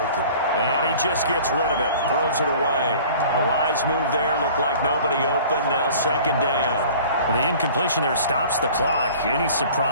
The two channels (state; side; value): inverted; both; correlation -0.46